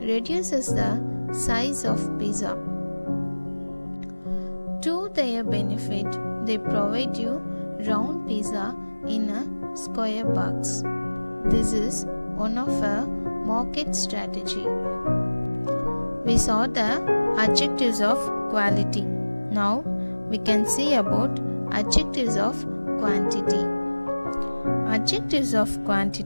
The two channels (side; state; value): both; inverted; correlation -1.00